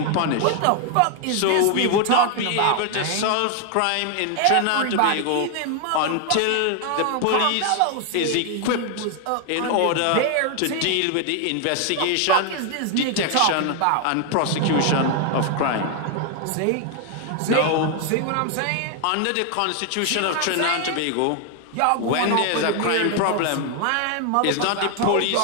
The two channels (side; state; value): both; different; correlation 0.00